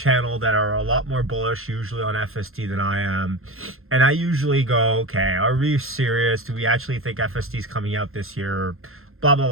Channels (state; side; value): late; left; 0.61 ms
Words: that are a lot more bullish usually on FSD than I am. And I usually go, okay, are we serious? Do we actually think FSD is coming out this year? Blah, blah,